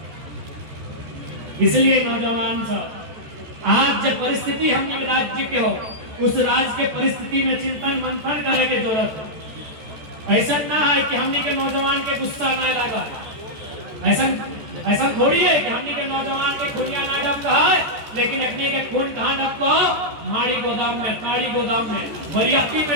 इसलिए नौजवान सब आज जब परिस्थिति हमने राज्य के हो, उस राज्य के परिस्थिति में चिंतन मंथन करने की जरूरत है। ऐसा ना है कि हमने के नौजवान के गुस्सा ना लगा, ऐसा थोड़ी है कि हमने के नौजवान के खूनिया ना डब कहा है, लेकिन अपने के खून कहाँ डब को, माड़ी गोदाम में, ताड़ी गोदाम में, बरियाती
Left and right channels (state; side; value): late; left; 14 ms